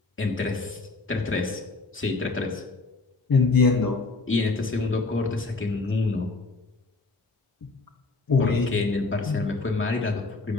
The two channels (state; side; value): quieter; right; 3.7 dB